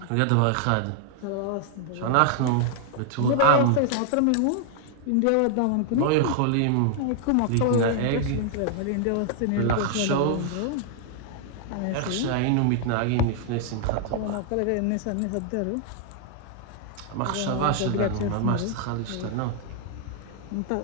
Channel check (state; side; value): different; both; correlation 0.00